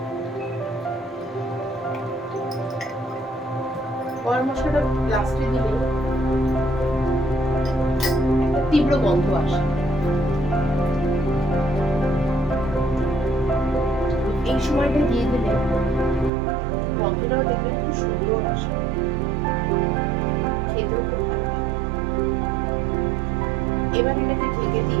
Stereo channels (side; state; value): left; drops out; at 16.3 s